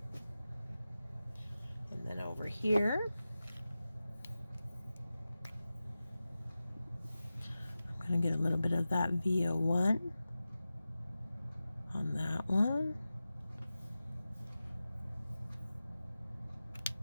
Then over here, I'm going to get a little bit of that VO1 on that one.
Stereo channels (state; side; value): inverted; both; correlation -0.94